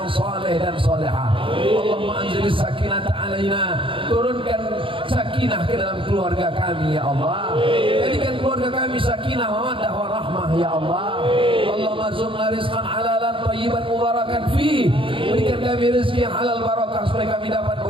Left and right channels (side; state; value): left; late; 0.25 ms